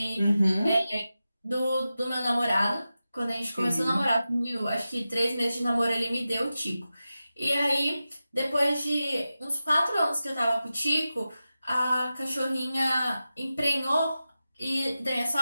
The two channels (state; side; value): inverted; both; correlation -0.93